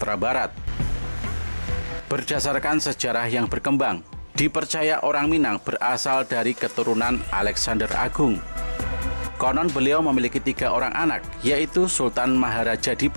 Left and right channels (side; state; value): both; inverted; correlation -1.00